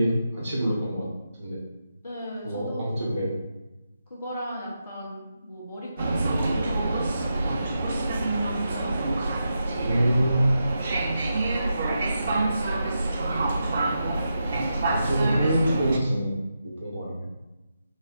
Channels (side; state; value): both; inverted; correlation -0.86